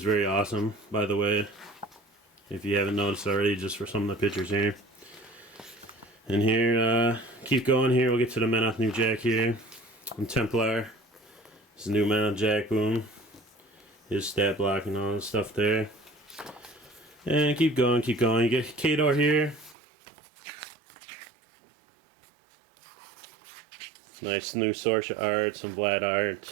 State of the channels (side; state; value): left; drops out; at 19.8 s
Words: very awesome, by the way, if you haven't noticed already, just for some of the pictures here. And here, keep going here. We'll get to the Menoth new jack here. And Templar. This is new Menoth jack, boom. His stat block and all the stuff there. And keep going. You get Khador here. Nice new Sorsha art, some Vlad